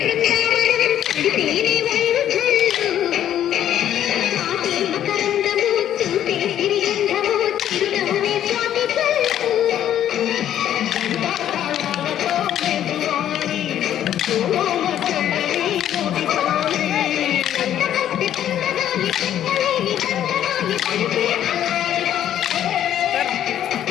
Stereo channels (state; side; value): quieter; right; 11.0 dB